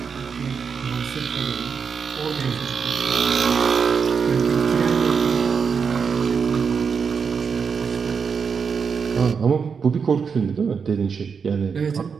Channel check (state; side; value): quieter; left; 6.0 dB